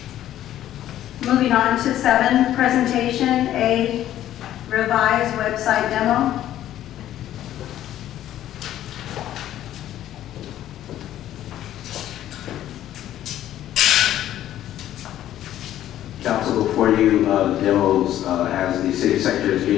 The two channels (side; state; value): right; quieter; 12.4 dB